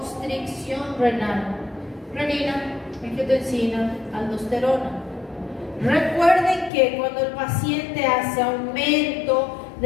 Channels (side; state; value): right; drops out; at 6.7 s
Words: renal. Renina, angiotensina, aldosterona. Recuerden que cuando el paciente hace aumento